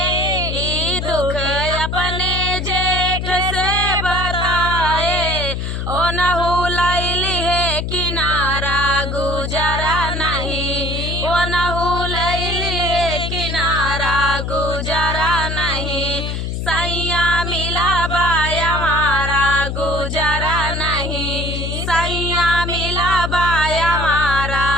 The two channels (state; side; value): noise; left; hum, 3 dB below the sound